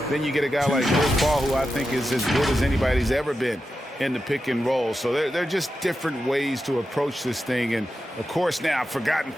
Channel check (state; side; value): normal; both; correlation 0.90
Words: then you get a guy like Chris Paul, who I think is as good as anybody's ever been in the pick and roll. So they're just different ways to approach this thing. And, of course, now I've forgotten